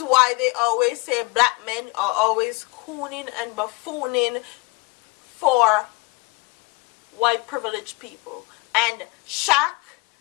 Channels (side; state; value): right; quieter; 25.4 dB